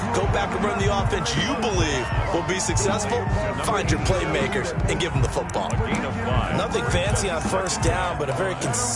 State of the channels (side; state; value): both; identical; correlation 1.00